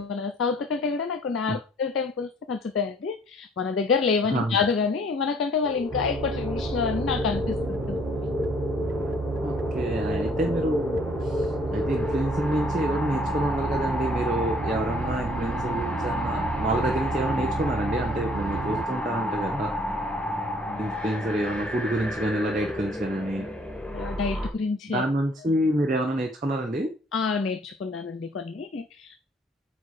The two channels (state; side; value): normal; both; correlation 0.59